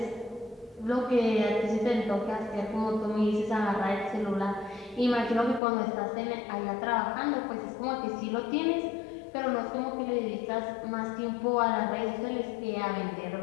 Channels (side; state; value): right; drops out; at 5.6 s